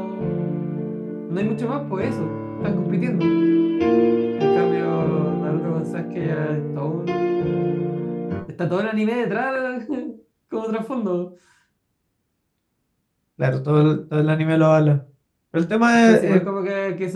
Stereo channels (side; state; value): both; identical; correlation 1.00